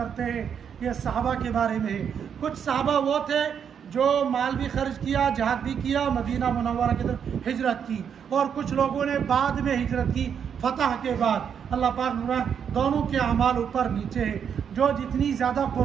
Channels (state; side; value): quieter; left; 7.7 dB